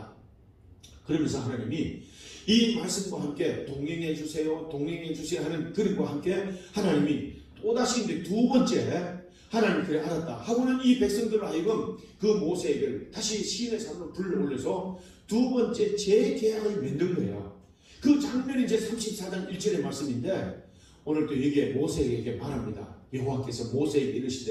그러면서 하나님이 이 말씀과 함께 동행해 주세요, 동행해 주세요 하는 그림과 함께 하나님이 또다시 이제 두 번째 하나님 그래 알았다 하고는 이 백성들을 하여금 그 모세에게 다시 시인의 산으로 불러올려서 두 번째 재계약을 만든 거예요. 그 장면이 이제 34장 1절의 말씀인데 오늘 또 여기에 모세에게 말합니다. 여호와께서 모세에게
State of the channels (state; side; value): identical; both; correlation 1.00